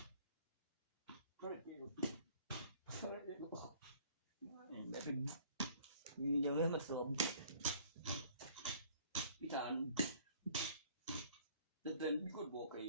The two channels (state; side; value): inverted; both; correlation -0.54